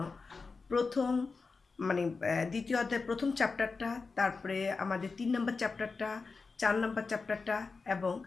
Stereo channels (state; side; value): quieter; right; 4.4 dB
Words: প্রথম দ্বিতীয় অধ্যায়ের প্রথম চ্যাপ্টারটা, তারপরে আমাদের 3 নম্বর চ্যাপ্টারটা, 4 নম্বর চ্যাপ্টারটা এবং